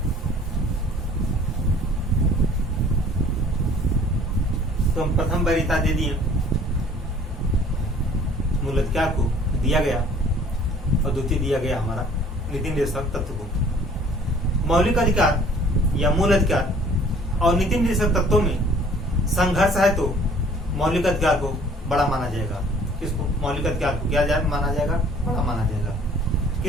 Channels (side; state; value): both; normal; correlation 0.53